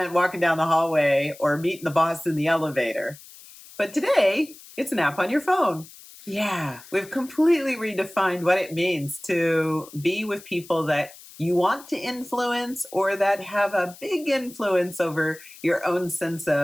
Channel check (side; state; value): left; noise; hiss, 20 dB below the sound